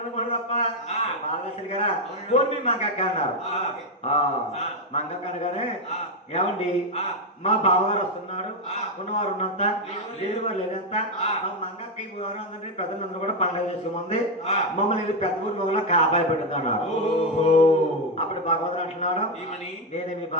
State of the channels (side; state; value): both; normal; correlation 0.06